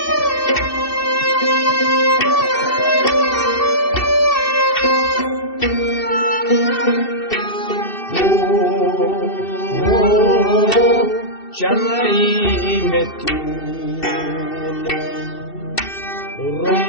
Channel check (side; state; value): right; late; 2.7 ms